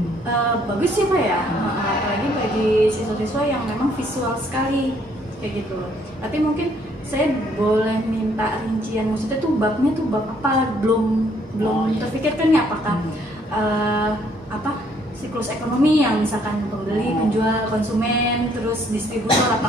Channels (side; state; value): both; normal; correlation 0.66